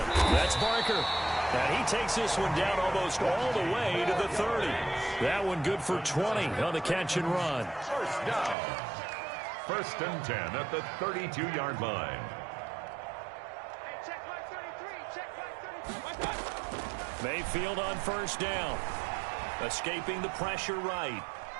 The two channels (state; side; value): drops out; left; at 8.6 s